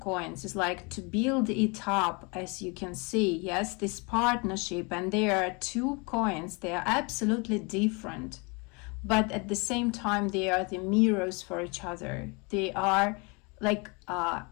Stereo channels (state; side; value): quieter; right; 30.1 dB